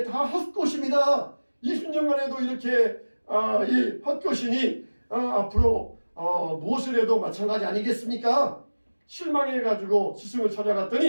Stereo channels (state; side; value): inverted; both; correlation -1.00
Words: 다 헛것입니다. 20년간 해도 이렇게 이 헛것이니 앞으로 무엇을 해도 마찬가지 아니겠습니까? 실망해가지고 스승을